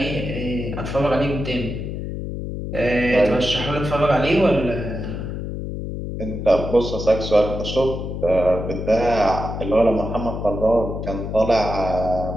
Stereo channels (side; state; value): left; noise; hum, 6 dB below the sound